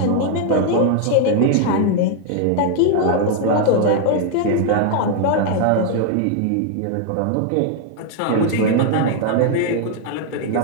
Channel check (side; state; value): both; different; correlation 0.00